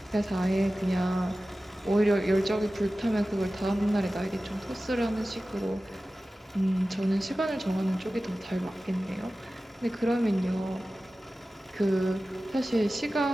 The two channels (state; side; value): normal; both; correlation 0.96